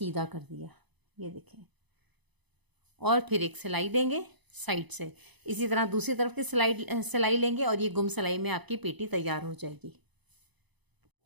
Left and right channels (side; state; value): left; late; 0.99 ms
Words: कर दिया। ये देखें और फिर एक सिलाई देंगे साइड से। इसी तरह दूसरी तरफ की सिलाई लेंगे और ये गुम सिलाई में आपकी पेटी तैयार हो जाएगी।